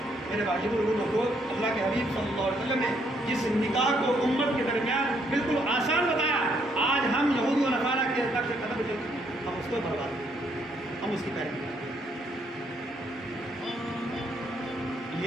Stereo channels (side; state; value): both; normal; correlation 0.71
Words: میرے بھائی بزرگوں کو اللہ کے حبیب صلی اللہ علیہ وسلم نے جس نکاح کو امت کے درمیان بالکل آسان بتایا، آج ہم یہودی و نصارا کے طرف سے قدم چلتے ہیں، ہم اس کو برباد کریں، ہم اس کی پیروی کریں.